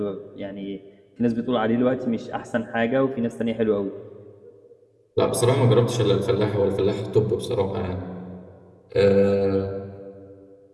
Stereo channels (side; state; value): both; identical; correlation 1.00